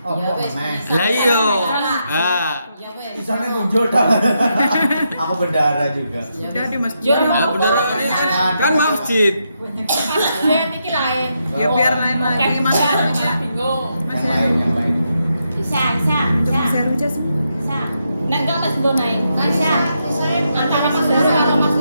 Lah iya. Ah, Isone tunjuk dah. Aku bendara juga. Udah di Mas. nah, bendera ini kan masjid. Dia iki lain. Ya biar lain lagi Mas Heru. Bingung. Mas Heru. Bisa. Mas Heru aja sih. Bisa. Nek enggak wis nggo naik. Bisa. Antara Mas Heru karo Mas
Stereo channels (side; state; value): both; inverted; correlation -0.82